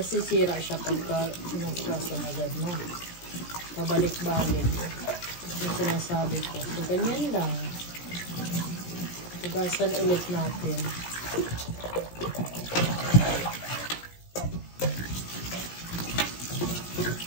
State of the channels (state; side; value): late; right; 17 ms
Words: siya pagka hinugasan agad, no? Pabalik-balik. Yung sinasabi ko. So, ganyan lang. Hugasan ulit natin.